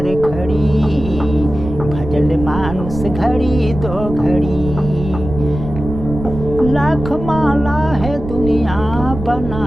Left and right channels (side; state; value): right; noise; rumble, 9 dB below the sound